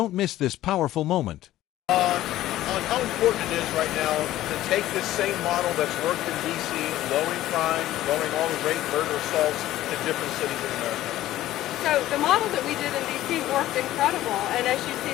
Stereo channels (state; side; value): quieter; right; 14.5 dB